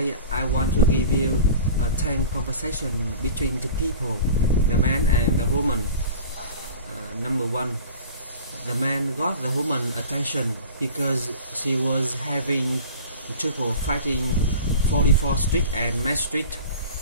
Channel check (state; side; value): inverted; both; correlation -0.38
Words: I want to give you a 10 conversation between two people, the man and the woman. Number one, the man got the woman attention because she was having trouble fighting 44th Street and Main Street.